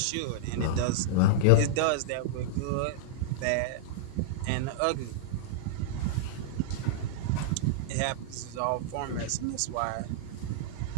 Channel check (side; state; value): both; different; correlation -0.02